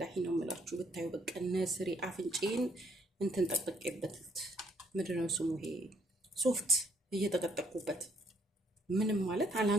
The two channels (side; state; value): both; normal; correlation 0.68